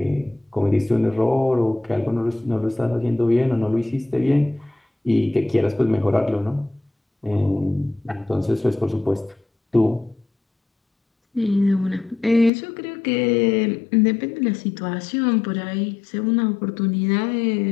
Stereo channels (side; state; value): right; drops out; at 12.5 s